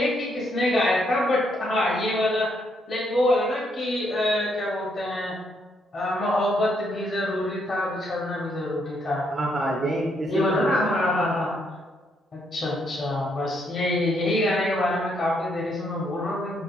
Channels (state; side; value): normal; both; correlation 0.74